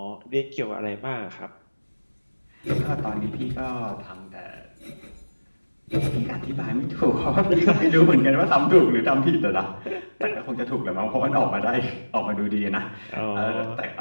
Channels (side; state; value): both; inverted; correlation -1.00